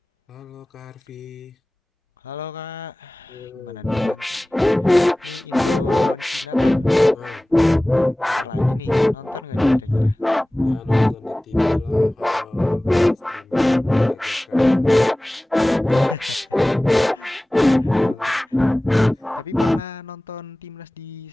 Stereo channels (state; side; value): normal; both; correlation 0.98